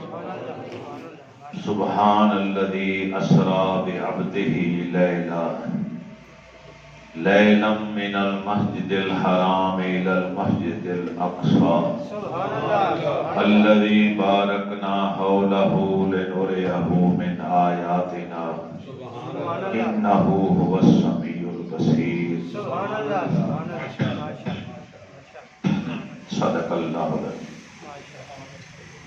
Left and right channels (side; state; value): both; identical; correlation 1.00